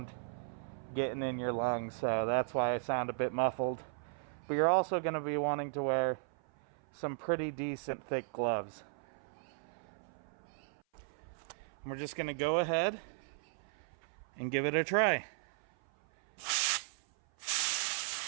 getting in your lungs. So that's why I sound a bit muffled. But you're also going to be wanting to wear some pretty decent thick gloves. And we're just going to go ahead and give it a try.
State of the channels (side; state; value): left; silent; 53 dB below the other